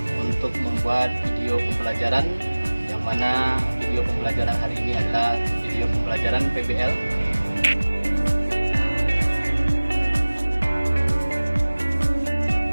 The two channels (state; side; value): inverted; both; correlation -1.00